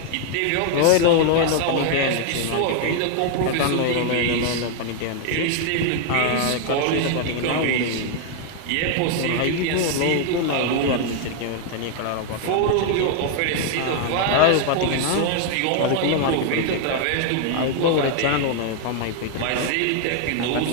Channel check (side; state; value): both; different; correlation 0.00